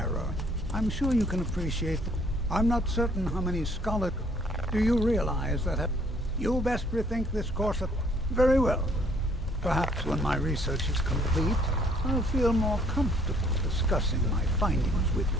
I'm sure you can appreciate... I'm not certain how many scholars... Do you realize that... You best rethink this course of... Very well. Perhaps when my research is complete, I'll feel more comfortable discussing my findings with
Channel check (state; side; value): normal; both; correlation 0.62